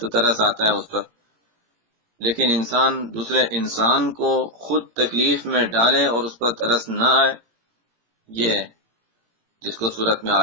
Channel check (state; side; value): late; left; 18 ms